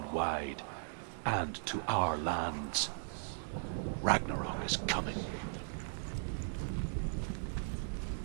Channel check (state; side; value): silent; left; 53 dB below the other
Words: wide, and to our lands. Ragnarok is coming.